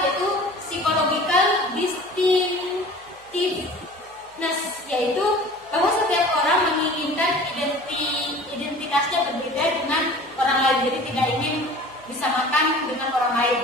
yaitu psychological distinctiveness, yaitu bahwa setiap orang menginginkan identitasnya berbeda dengan orang lain, jadi tidak ingin disamakan dengan orang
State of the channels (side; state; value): right; noise; hum, 30 dB below the sound